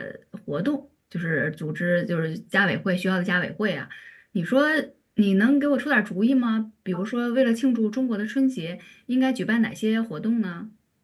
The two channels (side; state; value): both; identical; correlation 1.00